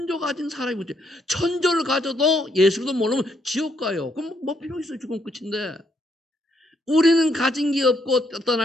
가진 사람이 문제. 천조를 가져도 예수도 모르면 지옥 가요. 그럼 뭐 필요 있어요? 죽으면 끝인데. 우리는 가진 게 없고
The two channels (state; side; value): normal; both; correlation 0.73